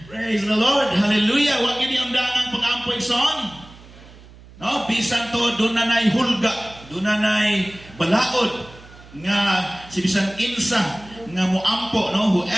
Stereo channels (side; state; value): right; noise; hum, 21 dB below the sound